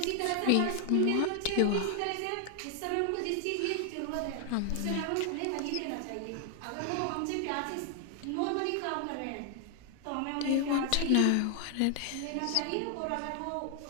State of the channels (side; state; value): both; different; correlation 0.00